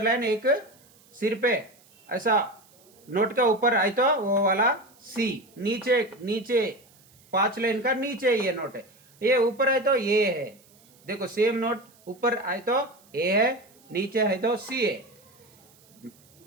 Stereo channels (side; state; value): right; noise; hiss, 29 dB below the sound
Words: लाइन एक सिर पे ऐसा नोट का ऊपर आए तो वो वाला सी। नीचे 5 लाइन का नीचे ये नोट है, ये ऊपर आए तो ये है। देखो सेम नोट ऊपर आए तो ए है, नीचे है तो सी है।